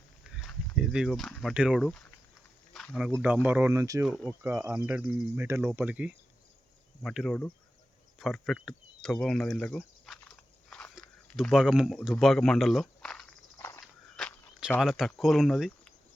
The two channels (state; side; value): normal; both; correlation 0.92